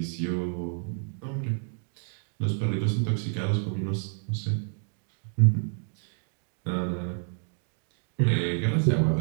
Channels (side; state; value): left; silent; 58 dB below the other